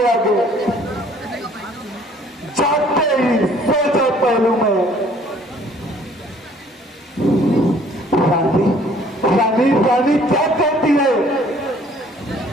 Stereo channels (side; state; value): both; normal; correlation 0.57